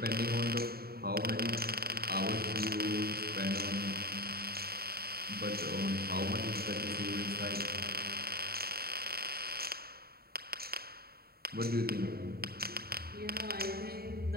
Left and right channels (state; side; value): late; left; 0.45 ms